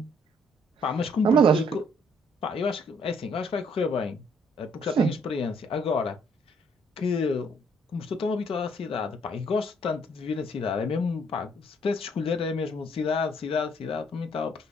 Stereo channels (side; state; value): both; normal; correlation 0.65